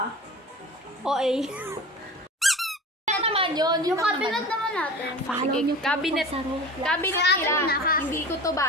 OA. Ano naman yun? Yung cabinet naman natin. Follow Sige, niyo po cabinet. sa Roblox. Cabinet Akin nila. na, ha? Hindi ko to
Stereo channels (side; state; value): both; normal; correlation 0.36